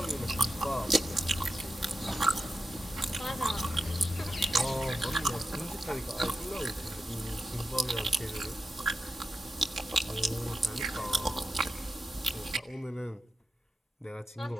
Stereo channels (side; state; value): both; normal; correlation 0.89